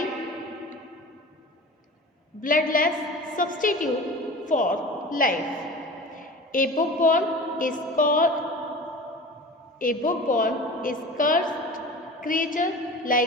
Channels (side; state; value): both; normal; correlation 0.37